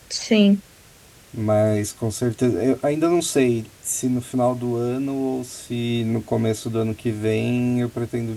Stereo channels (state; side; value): identical; both; correlation 1.00